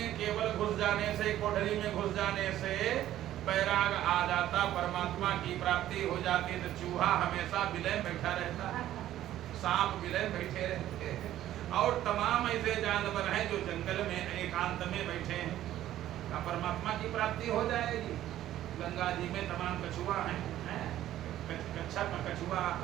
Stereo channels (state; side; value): quieter; left; 13.0 dB